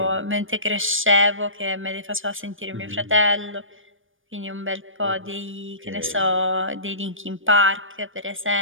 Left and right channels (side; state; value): left; late; 0.58 ms